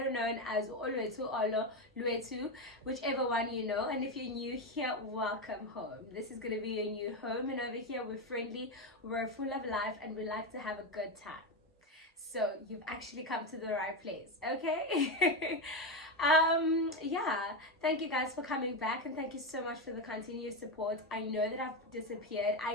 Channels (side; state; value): both; normal; correlation 0.12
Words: known as Olwetu Olo Lwetu, whichever one you know. And if you're new here, welcome home. This is going to be your new home, and over here we're friendly, we're full of life, and we like to have a good time. So you've actually come to the right place, okay? Yeah, thank you guys for coming back, and thank you so much for the continuous support. I know that I've disappeared,